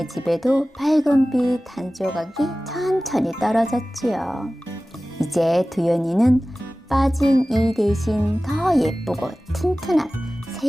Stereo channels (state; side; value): normal; both; correlation 0.97